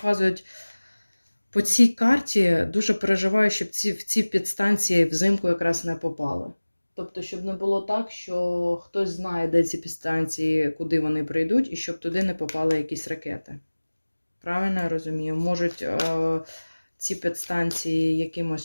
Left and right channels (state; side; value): inverted; both; correlation -1.00